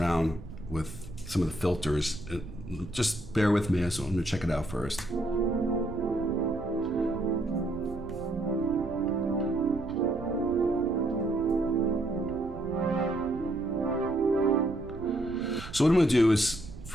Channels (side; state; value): right; noise; rumble, 13 dB below the sound